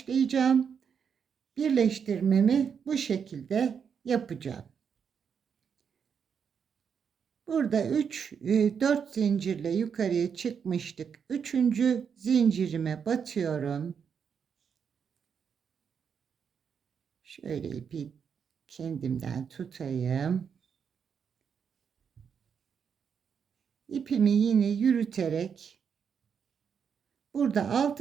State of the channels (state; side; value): quieter; left; 7.0 dB